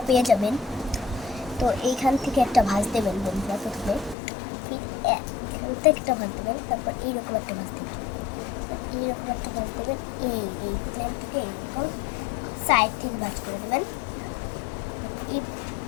পেয়ে যাবেন। তো এইখান থেকে একটা ভাঁজ দেবেন বন্ধুরা। প্রথমে এখান থেকে একটা ভাঁজ দেবেন, তারপর এইরকম একটা ভাঁজ দেবেন, এইরকম একটা ভাঁজ দেবেন, এই প্লেন থেকে এইরকম সাইড থেকে ভাঁজ করে দেবেন।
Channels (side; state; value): right; drops out; at 4.2 s